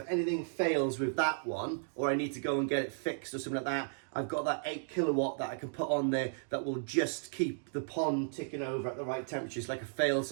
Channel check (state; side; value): silent; left; digital silence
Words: anything fails with that one, or I need to go and get it fixed or something like that, I've got that 8 kilowatt that I can put on there that will just keep the pond ticking over at the right temperature. It's like a